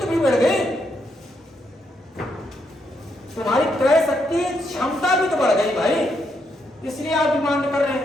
भी बढ़ गई, तुम्हारी क्रय शक्ति क्षमता भी तो बढ़ गई भाई, इसलिए आप डिमांड कर रहे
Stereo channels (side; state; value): both; normal; correlation 0.78